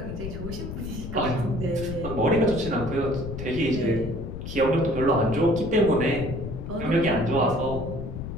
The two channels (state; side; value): noise; left; rumble, 7 dB below the sound